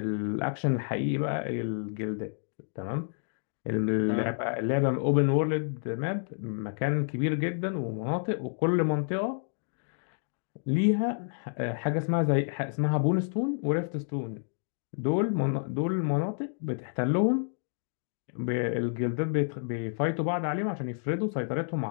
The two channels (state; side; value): silent; right; digital silence